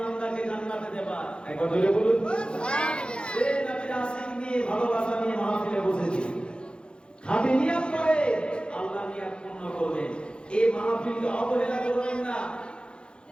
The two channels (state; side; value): late; right; 0.054 ms